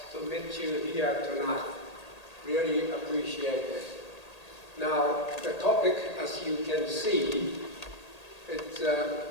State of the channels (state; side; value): late; right; 1.8 ms